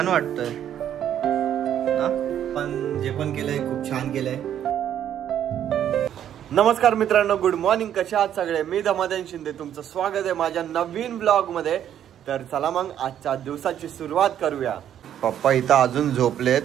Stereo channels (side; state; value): left; quieter; 10.2 dB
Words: वाटतंय ना, पण जे पण केलंय खूप छान केलंय. नमस्कार मित्रांनो, गुड मॉर्निंग. कशा आहात सगळे? मी धमाधन शिंदे, तुमचं स्वागत आहे माझ्या नवीन ब्लॉग मध्ये. तर चला मग आजच्या दिवसाची सुरुवात करूया. पप्पा इथं अजून झोपलेत,